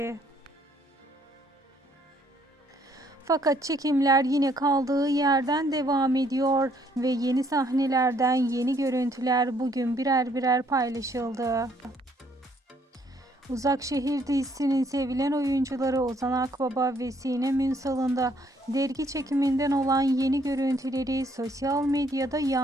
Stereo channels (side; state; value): both; normal; correlation 0.66